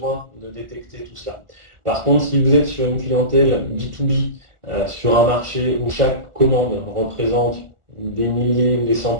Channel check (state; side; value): late; left; 1.4 ms